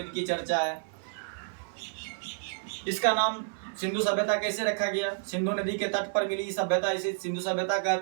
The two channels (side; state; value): left; silent; 58 dB below the other